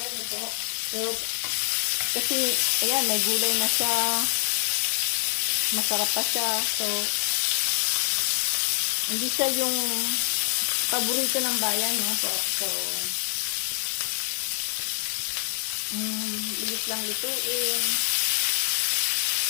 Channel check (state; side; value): silent; right; 60 dB below the other